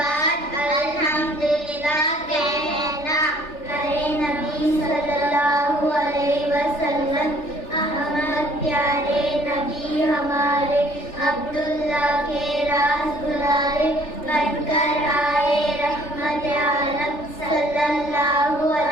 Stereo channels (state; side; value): late; right; 3.4 ms